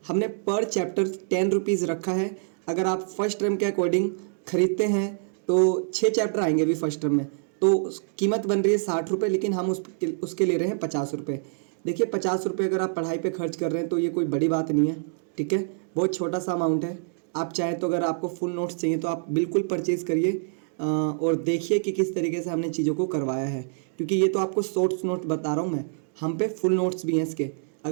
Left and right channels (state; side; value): silent; left; digital silence